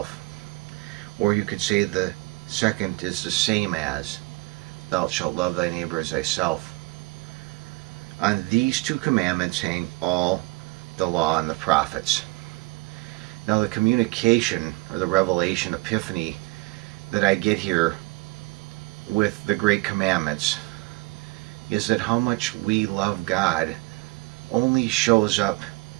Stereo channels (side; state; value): left; quieter; 24.4 dB